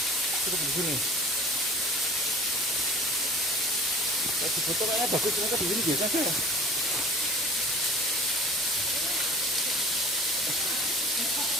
Cukup di sini. Di foto kayaknya bagus, ternyata di sini biasa aja.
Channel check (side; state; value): left; noise; hum, 28 dB below the sound